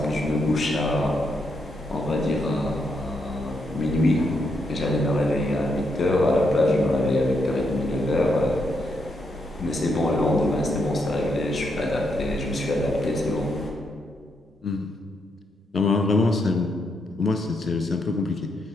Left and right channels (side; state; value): both; normal; correlation 0.79